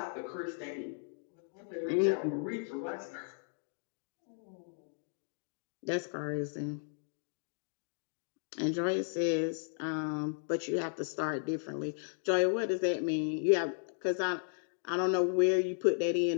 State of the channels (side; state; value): right; silent; digital silence